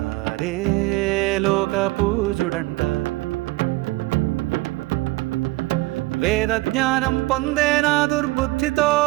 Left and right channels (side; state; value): left; quieter; 20.3 dB